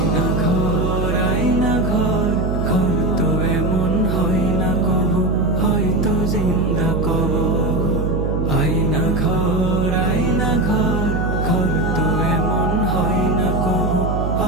ঘর, আয়না ঘর, ঘর তো এমন হয় না কবু, হয়তো জিন্দা কবর। আয়না ঘর, আয়না ঘর, ঘর তো এমন হয় না কবু,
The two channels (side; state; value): right; noise; hum, 1 dB below the sound